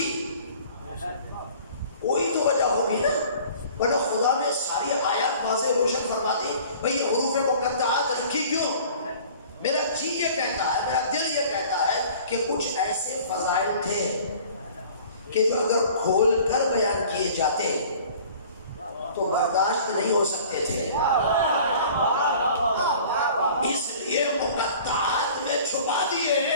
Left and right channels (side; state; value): both; inverted; correlation -0.48